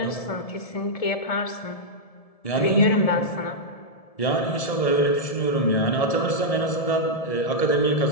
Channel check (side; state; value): right; late; 1.7 ms